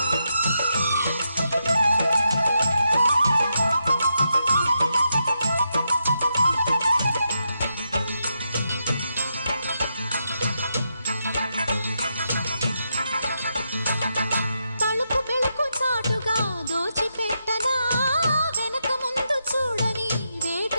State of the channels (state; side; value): inverted; both; correlation -0.83